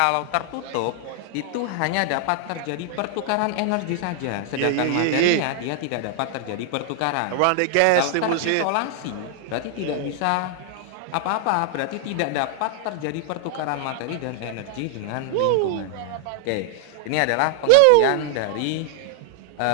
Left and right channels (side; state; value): both; different; correlation 0.00